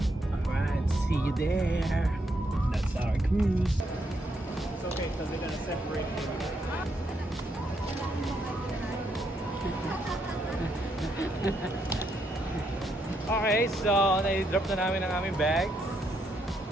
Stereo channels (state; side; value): normal; both; correlation 0.77